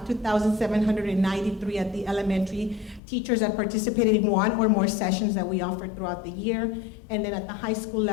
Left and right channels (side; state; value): right; drops out; at 3.0 s